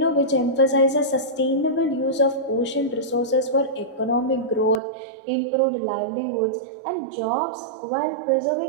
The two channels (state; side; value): drops out; left; at 4.8 s